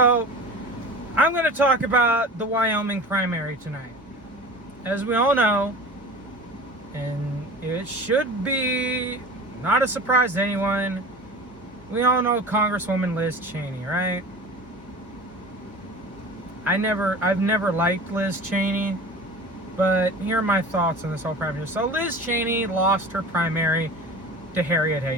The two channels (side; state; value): both; normal; correlation 0.37